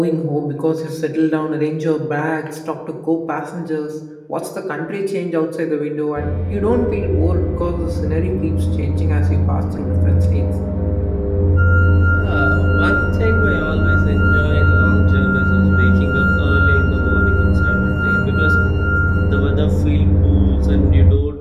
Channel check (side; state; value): both; identical; correlation 1.00